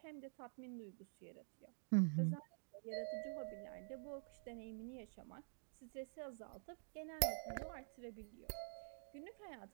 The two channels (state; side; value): silent; left; digital silence